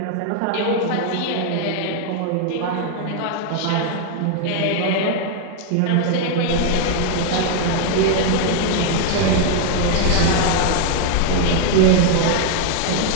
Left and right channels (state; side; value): different; both; correlation 0.00